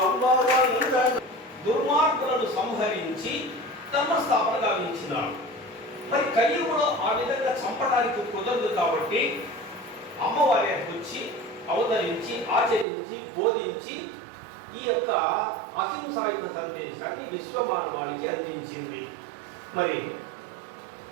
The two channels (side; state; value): left; drops out; at 12.9 s